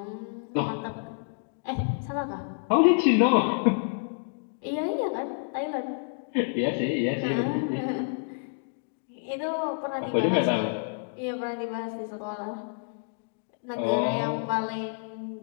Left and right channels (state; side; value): silent; right; digital silence